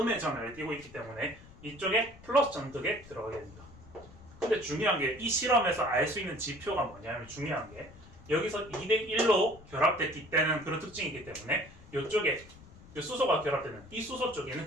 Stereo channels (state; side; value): noise; left; rumble, 20 dB below the sound